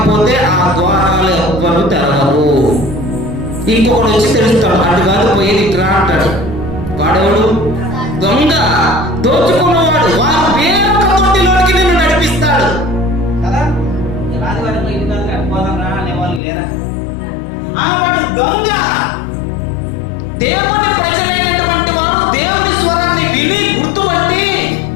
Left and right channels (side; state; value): right; drops out; at 16.4 s